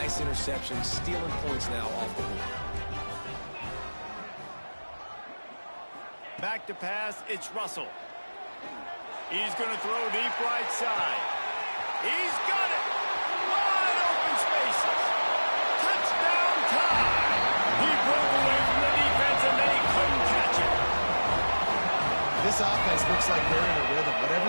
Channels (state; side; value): inverted; both; correlation -1.00